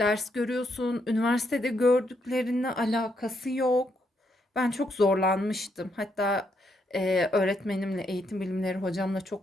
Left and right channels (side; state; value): both; normal; correlation 0.77